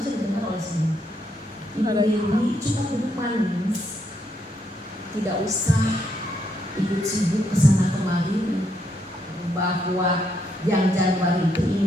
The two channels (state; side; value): normal; both; correlation 0.76